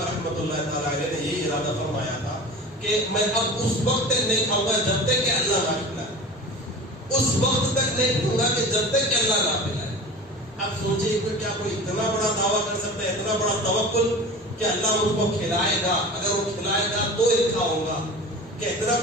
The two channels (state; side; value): normal; both; correlation 0.36